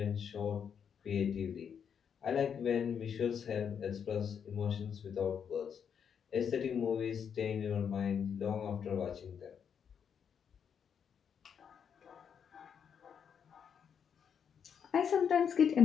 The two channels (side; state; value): right; quieter; 7.5 dB